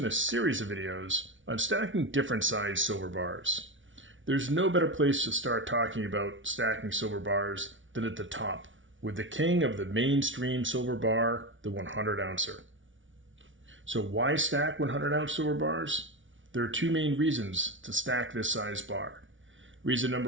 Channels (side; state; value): left; late; 0.56 ms